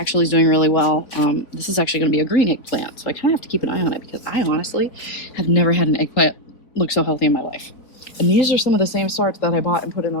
is doing really well. This is actually going to be a green eggplant, so I kind of have to keep an eye on it because I honestly have never had an eggplant look so healthy in my life. And these are some of the same sorts that I bought and put in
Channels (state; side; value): late; right; 3.8 ms